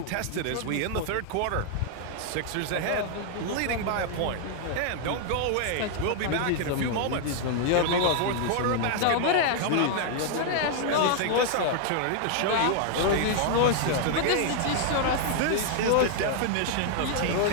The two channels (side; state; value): both; different; correlation 0.00